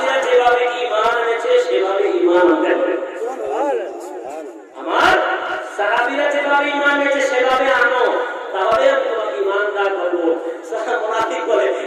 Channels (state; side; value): identical; both; correlation 1.00